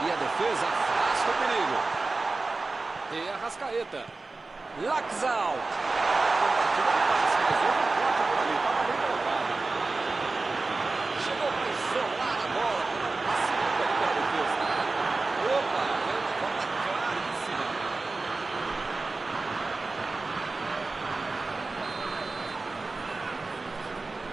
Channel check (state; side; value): quieter; left; 3.6 dB